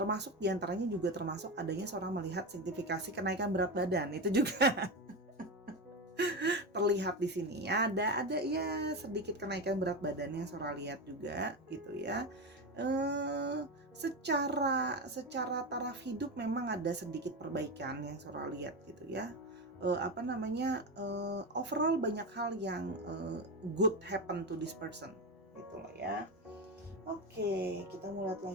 diantaranya juga termasuk adanya Sora melihat sertifikasi kenaikan berat badan, itu juga terlihat di sini ya. Ada ya sedikit kenaikan berat badan yang Sora lihat juga gitu ya. Secara taraf hidup memang ada sedikit perbaikan yang Sora lihat gitu ya. Overall banyak hal yang good happen to this person gitu loh ya. Oke, kita mulai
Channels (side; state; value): both; normal; correlation 0.17